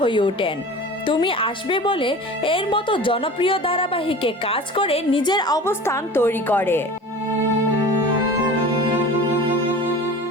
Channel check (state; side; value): normal; both; correlation 0.38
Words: ওঠেন। তুমি আসবে বলে এর মতো জনপ্রিয় ধারাবাহিকে কাজ করে নিজের অবস্থান তৈরি করে।